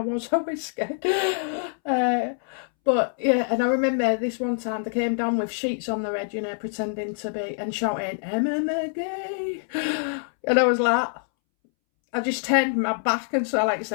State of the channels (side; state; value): right; silent; 62 dB below the other